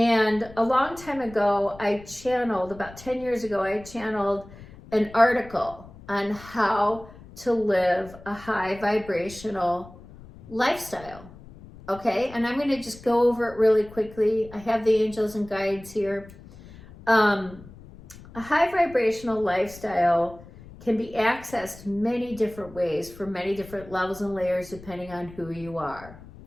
a long time ago, about 10 years ago, I channeled an article on how to live a high vibrational lifestyle. Okay, and I'm going to just go over it really quickly. I have the angels and guides here. A high vibrational lifestyle can be accessed many different ways for many different levels and layers depending on who you are.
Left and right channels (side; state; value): left; noise; rumble, 19 dB below the sound